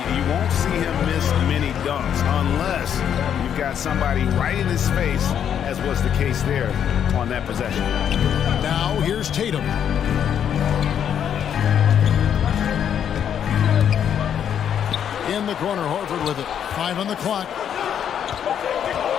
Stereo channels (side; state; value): right; quieter; 8.9 dB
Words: you won't see him miss many dunks unless you've got somebody right in his face, as was the case there on that possession. Now here's Tatum. In the corner, Horford with it. 5 on the clock.